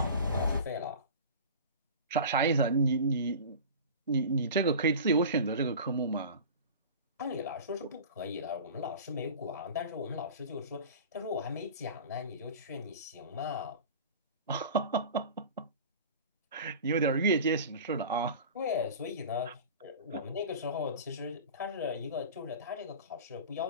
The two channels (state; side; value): inverted; both; correlation -0.36